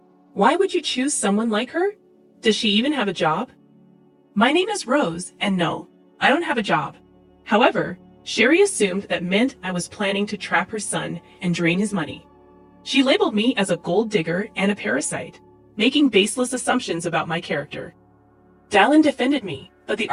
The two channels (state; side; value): identical; both; correlation 1.00